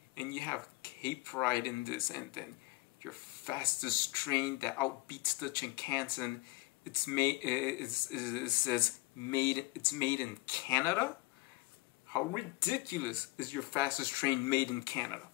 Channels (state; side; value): quieter; right; 22.0 dB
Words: and you have Cape Pride in this, and then your fastest train that outbeats the Shinkansen. It's made. It says made. It's made in Canada. How ridiculous is your fastest train made in Canada?